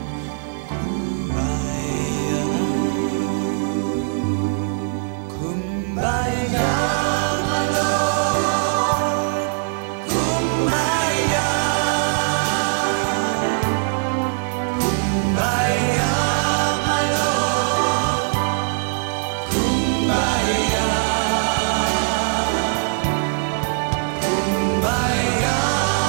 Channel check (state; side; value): silent; left; 65 dB below the other